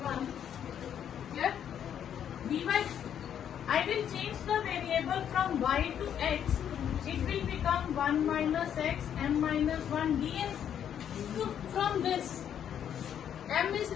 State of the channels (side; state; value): right; quieter; 9.2 dB